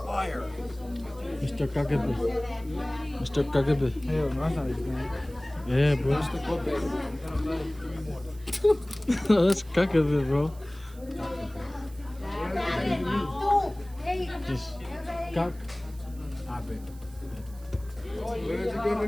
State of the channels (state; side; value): noise; right; hiss, 24 dB below the sound